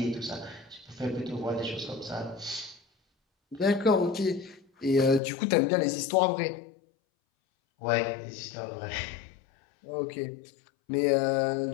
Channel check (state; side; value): drops out; right; at 5.2 s